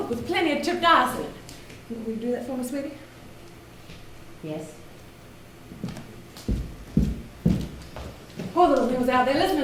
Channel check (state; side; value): identical; both; correlation 1.00